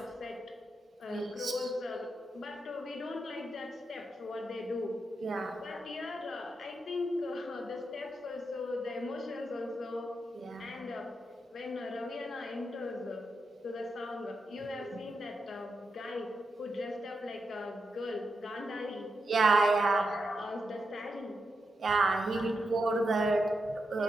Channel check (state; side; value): normal; both; correlation 0.85